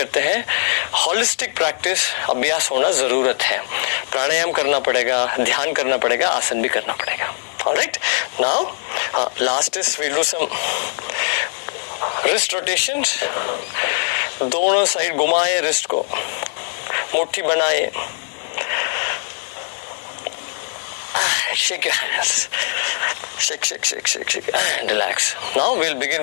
हैं, holistic practice अभ्यास होना जरूरत है. प्राणायाम करना पड़ेगा, ध्यान करना पड़ेगा, आसन भी करना पड़ेगा. Alright, now last is we'll do some wrist rotations. दोनों साइड घुमाए wrist को, मुट्ठी बनाए. Shake your hands. Shake and relax. Now we'll begin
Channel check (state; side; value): silent; right; 56 dB below the other